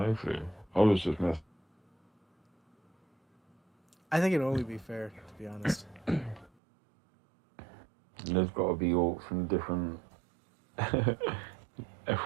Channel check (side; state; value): left; drops out; at 6.5 s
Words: clue. I was just messing. I think it'd only be fair, to be honest. There's got to be orcs from different, from